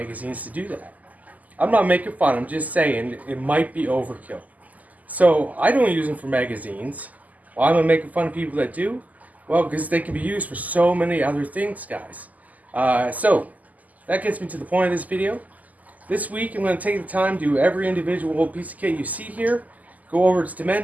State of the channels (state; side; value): late; left; 0.078 ms